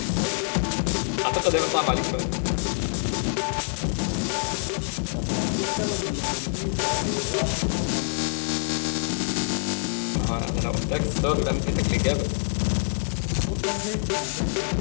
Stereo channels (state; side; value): silent; right; digital silence